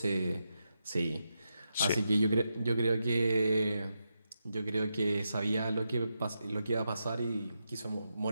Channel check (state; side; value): inverted; both; correlation -0.86